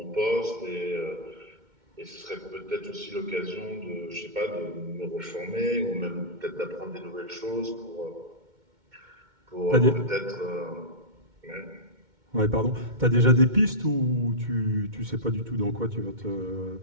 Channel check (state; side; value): late; left; 2.2 ms